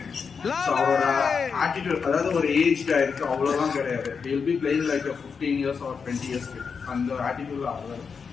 அவரோட ஆட்டிடியூட், அதாவது ஒரு ஏஜ் இருக்கு அவ்வளவுதான் கிடையாது. Will be playing like 15 years or 20 years அந்த ஆட்டிடியூட்ல ஆடுவாரு.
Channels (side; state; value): right; quieter; 5.8 dB